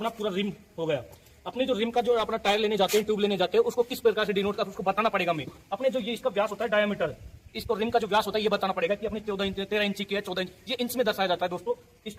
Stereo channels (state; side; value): identical; both; correlation 1.00